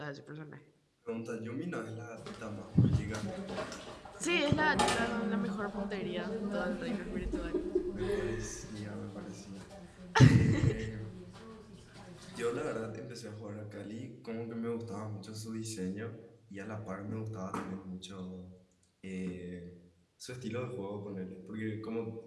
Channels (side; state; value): both; identical; correlation 1.00